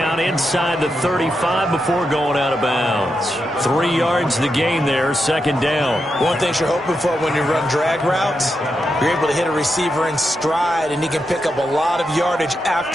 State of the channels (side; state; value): both; normal; correlation 0.86